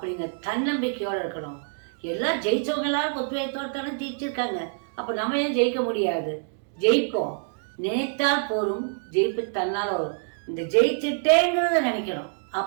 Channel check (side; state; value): left; silent; digital silence